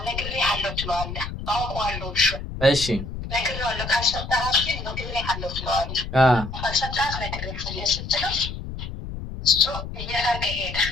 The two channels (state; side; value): noise; left; rumble, 8 dB below the sound